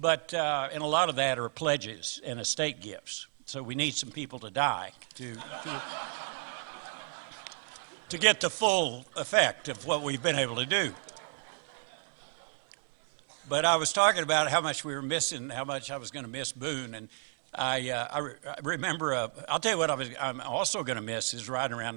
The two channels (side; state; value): left; silent; 56 dB below the other